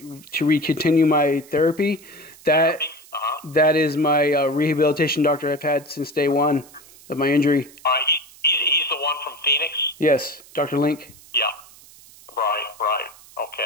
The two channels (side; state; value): right; noise; hiss, 23 dB below the sound